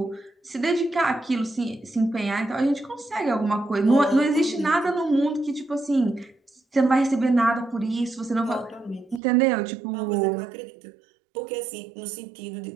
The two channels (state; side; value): drops out; left; at 9.2 s